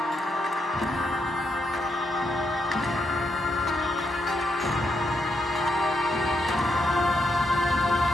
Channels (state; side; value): normal; both; correlation 0.79